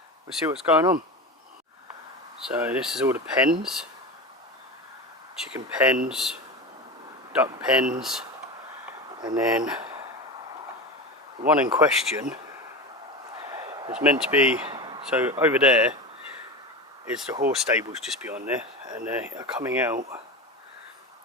We'll see what's going on. So this is all the pens, chicken pens, duck pens. And then the one in question is meant to be, so over there is the horse stables just beyond there, and they are coming out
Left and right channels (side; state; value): both; normal; correlation 0.25